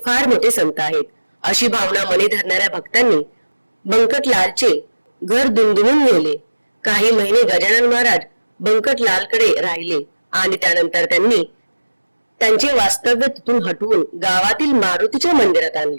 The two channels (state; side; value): inverted; both; correlation -1.00